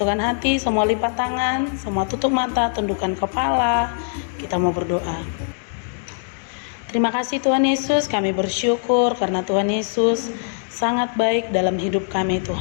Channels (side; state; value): right; silent; digital silence